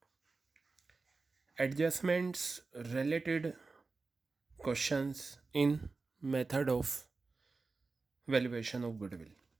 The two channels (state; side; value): quieter; left; 4.0 dB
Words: adjustments related questions in method of valuation of goodwill.